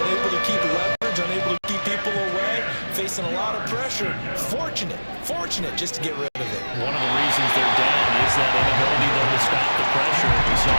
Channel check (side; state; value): both; inverted; correlation -1.00